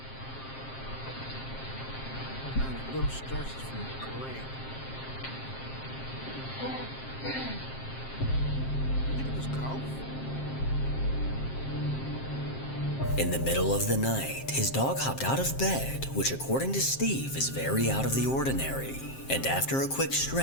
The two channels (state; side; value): late; right; 7.6 ms